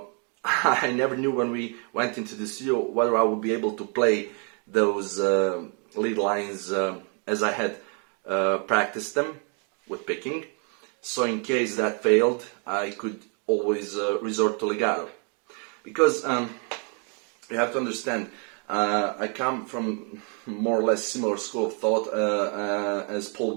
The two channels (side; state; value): left; quieter; 39.3 dB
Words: I never knew when we went into the studio whether I would be able to play those lead lines as I had practiced them with picking. So in case that failed, I could always resort to legato. Because you have to understand, I come from more or less similar school of thought as Paul